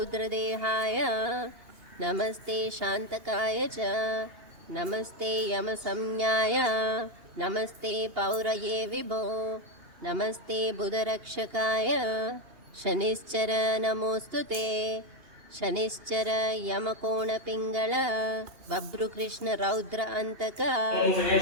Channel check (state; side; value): late; left; 2.8 ms